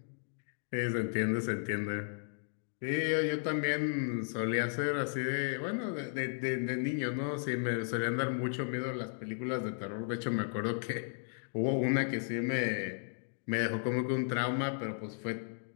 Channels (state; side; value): silent; right; digital silence